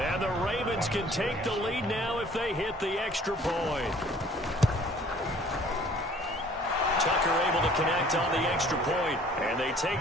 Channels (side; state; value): both; normal; correlation 0.54